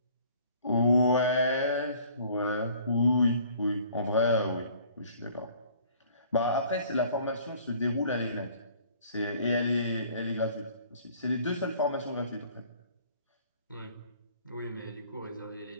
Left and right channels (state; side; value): inverted; both; correlation -0.54